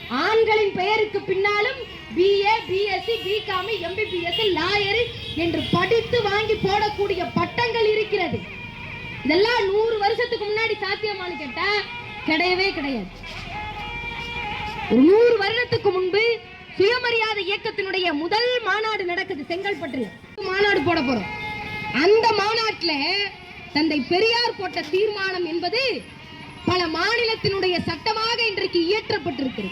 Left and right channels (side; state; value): both; identical; correlation 1.00